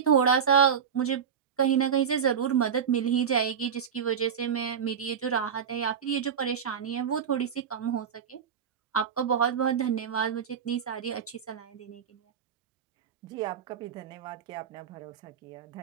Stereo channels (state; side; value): quieter; left; 7.5 dB